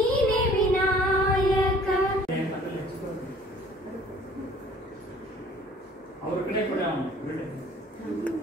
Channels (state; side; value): normal; both; correlation 0.53